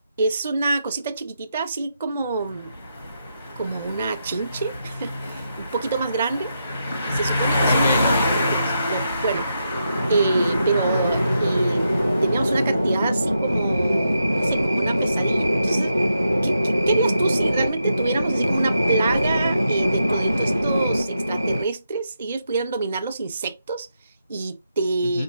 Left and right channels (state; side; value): inverted; both; correlation -0.83